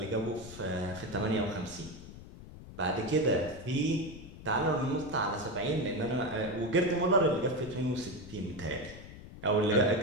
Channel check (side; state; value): left; noise; rumble, 15 dB below the sound